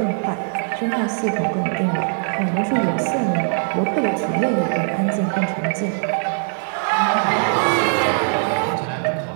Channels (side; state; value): left; silent; 61 dB below the other